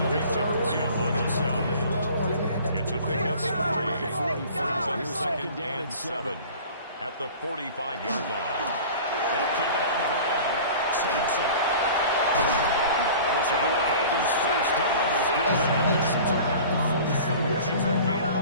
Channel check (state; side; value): inverted; both; correlation -0.42